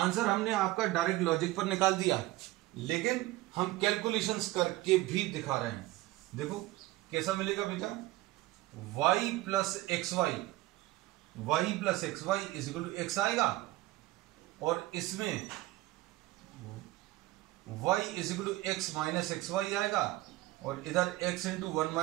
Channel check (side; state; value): left; quieter; 18.0 dB